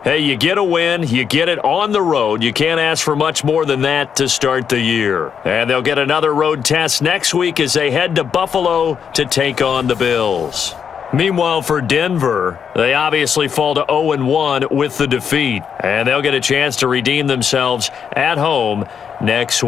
hey, you get a win, you get it on the road. You can't ask for much more than that to start the year. And they'll get another road test next week as they head to Buffalo to take on the Bills. Meanwhile, for Denver, they obviously fall to 0-1 with the defeat. And they'll get a chance to redeem themselves at home next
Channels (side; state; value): right; quieter; 7.3 dB